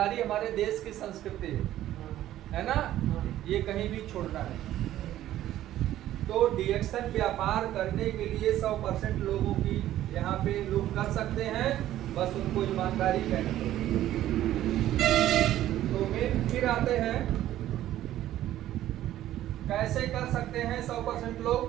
हमारे देश की संस्कृति है ना, ये कहीं भी छोड़ना नहीं। तो डिएक्शन व्यापार करने के लिए 100% लोगों की यहाँ पे लोग कर सकते हैं, बस उनको ईमानदारी कहना चाहिए। तो मेन फिर आते हैं कैसे कर सकते हैं 100%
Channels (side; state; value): left; quieter; 13.3 dB